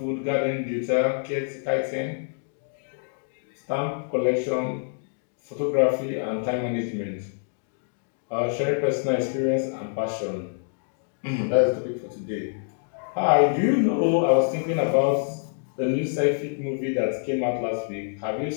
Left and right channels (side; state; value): right; silent; digital silence